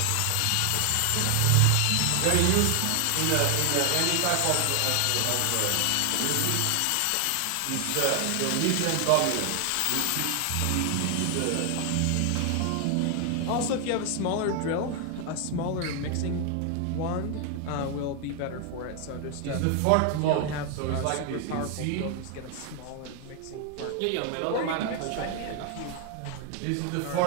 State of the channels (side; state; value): both; different; correlation 0.00